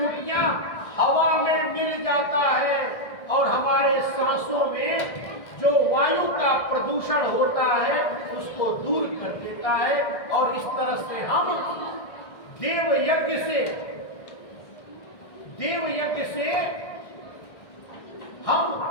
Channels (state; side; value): late; right; 1.6 ms